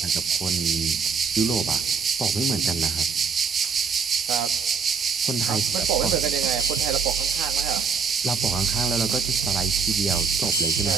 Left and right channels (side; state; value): left; quieter; 5.7 dB